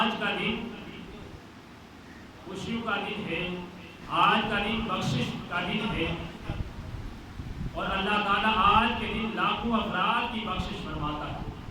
کا دن خوشیوں کا دن ہے، آج کا دن بخشش کا دن ہے، اور اللہ تعالیٰ آج کے دن لاکھوں افراد کی بخشش فرماتا ہے۔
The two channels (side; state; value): both; identical; correlation 1.00